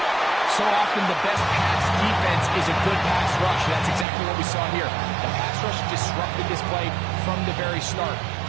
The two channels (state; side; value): drops out; left; at 4.0 s